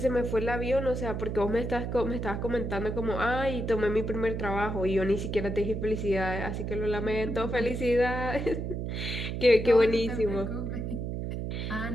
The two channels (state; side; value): noise; right; hum, 3 dB below the sound